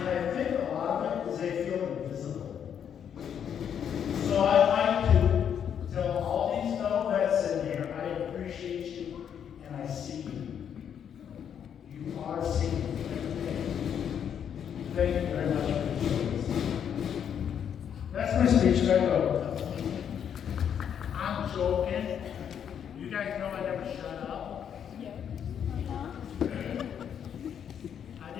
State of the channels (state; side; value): quieter; right; 8.5 dB